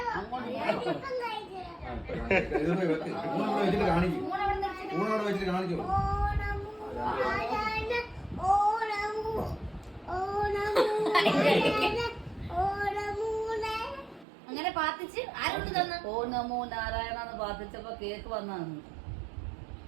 അങ്ങനെ പാത്തിച്ച് ആരോട് തന്നു? ഓ നമോ നാരായണന്ന് പാത്തിച്ചപ്പോ കേക്ക് വന്നാന്ന്.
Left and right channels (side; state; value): left; drops out; at 14.2 s